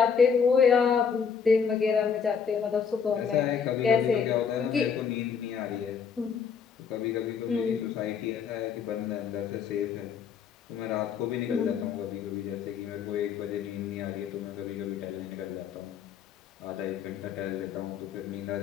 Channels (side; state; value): right; quieter; 6.7 dB